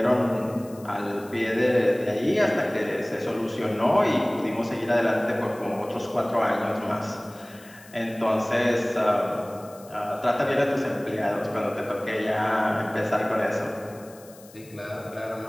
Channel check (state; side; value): noise; left; hiss, 23 dB below the sound